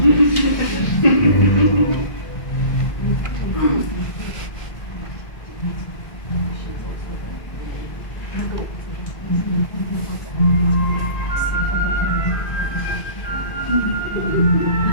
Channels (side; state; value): right; late; 1.7 ms